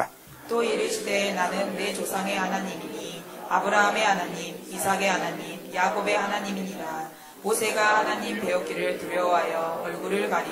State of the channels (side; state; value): both; identical; correlation 1.00